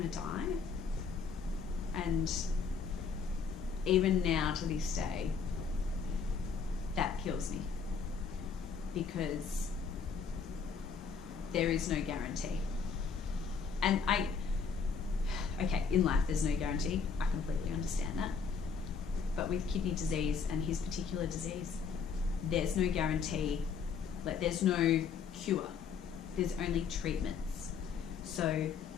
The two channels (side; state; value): right; quieter; 5.9 dB